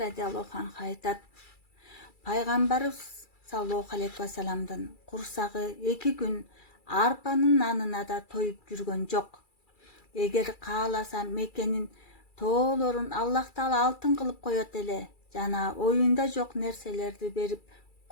анха айтат, пайгамбарыбыз саллаллаху алейхи вассаламдын курсагы 2 күн арпанын нанына да тоюп жүргөн жок. Эгер кааласа Мекенин тоолорун Аллах Таала алтын кылып коет эле жана оюнда жок нерселерди берип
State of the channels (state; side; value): late; right; 2.3 ms